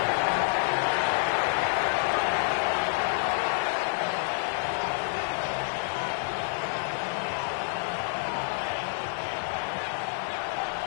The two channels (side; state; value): right; silent; digital silence